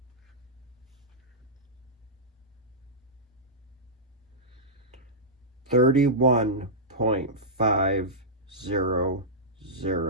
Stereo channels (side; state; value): both; normal; correlation -0.13